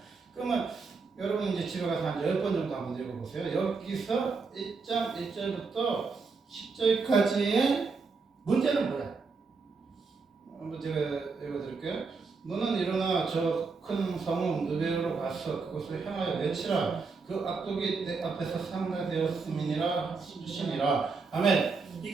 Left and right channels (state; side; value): quieter; left; 4.5 dB